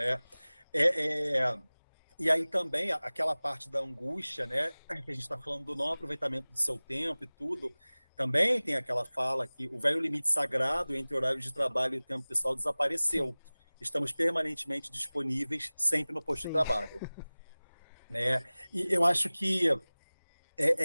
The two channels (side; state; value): both; inverted; correlation -0.99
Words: É, é, e aí também aquela parte da angústia, né? Que a gente está falando do não aproveitamento do seu tempo e tudo, também tem aquela fala que o velho limite sagrado entre horário de trabalho e tempo pessoal desapareceu. Estamos permanentemente disponíveis, sempre no posto de Sim, trabalho. Né? E eu acho que